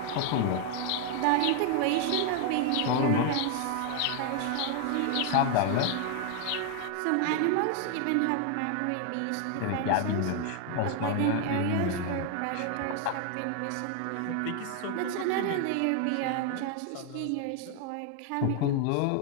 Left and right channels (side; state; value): both; different; correlation 0.00